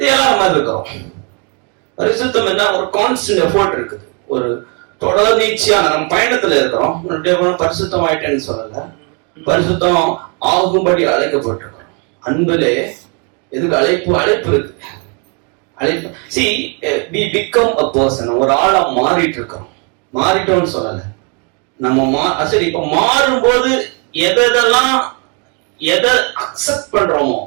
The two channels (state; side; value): quieter; left; 36.1 dB